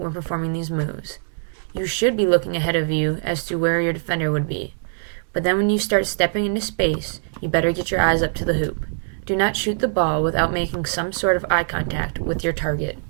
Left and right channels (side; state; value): left; silent; digital silence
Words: performing these moves. You should be looking ahead of you as to where your defender would be. But then when you start stepping into space, you better get your eyes up to the hoop. Do not shoot the ball without making some sort of eye contact with your target.